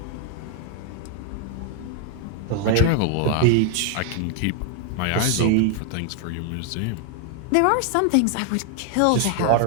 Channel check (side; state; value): both; different; correlation 0.00